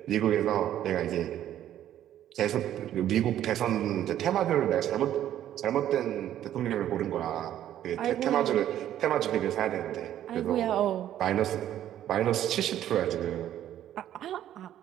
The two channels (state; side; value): quieter; left; 11.6 dB